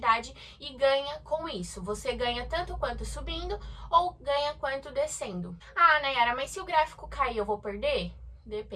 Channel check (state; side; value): identical; both; correlation 1.00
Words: e ganha com isso. Você ganha tanto quanto subindo ou ganha quanto descendo. Ah, Nayara, mas se o gráfico cair, eu vou perder?